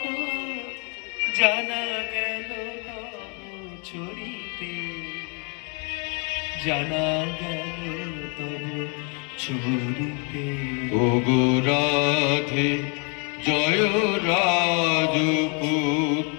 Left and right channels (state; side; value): quieter; right; 36.6 dB